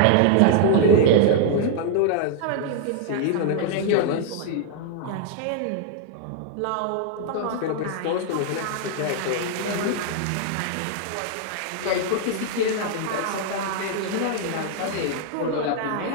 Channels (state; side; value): different; both; correlation -0.01